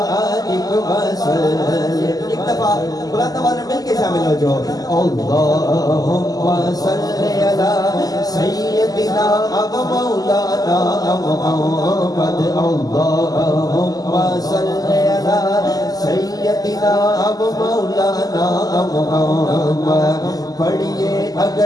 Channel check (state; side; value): late; right; 0.18 ms